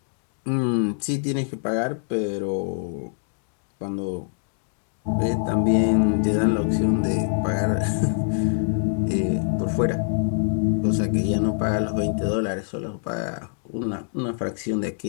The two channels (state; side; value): silent; right; digital silence